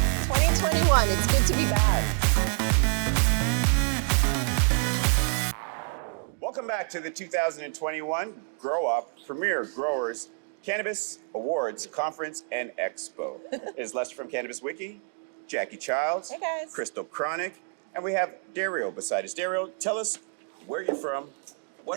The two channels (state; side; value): quieter; left; 39.0 dB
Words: It's good to be back. Welcome back to the 2021 GrowUp Premier Growers Cannabis Awards Conference and Expo. It is Lester from Cannabis-Wiki, Jacqui Childs, Hey guys. Christal Chronic, and we have Dario beside us. Dario, tell us where you're from,